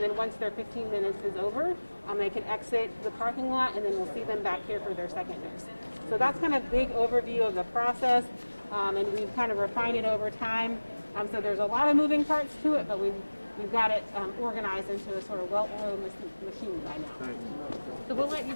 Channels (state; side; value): inverted; both; correlation -1.00